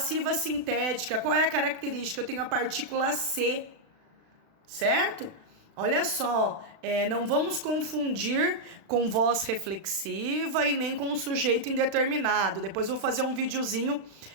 sintética. Qual é a característica? Eu tenho a partícula C, certo? Olha só, não vamos confundir com voz reflexiva e nem com sujeito indeterminado. Depois eu vou fazer um videozinho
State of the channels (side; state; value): left; late; 36 ms